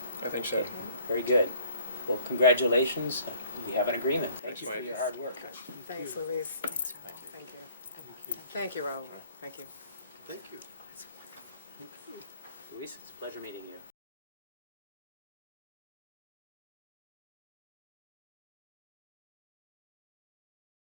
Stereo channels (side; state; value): both; inverted; correlation -0.57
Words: I think so. Very good. Well, congratulations. We have an agreement. Thank Thanks, you for Mike. your hard work. Thanks, Louise. Thank you. Thank you, Raul. Thank you. Thank you. Luis, it's a pleasure meeting you.